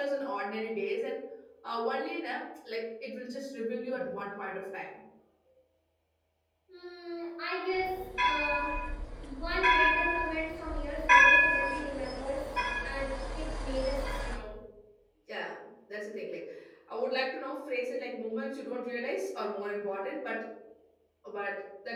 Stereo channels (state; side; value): identical; both; correlation 1.00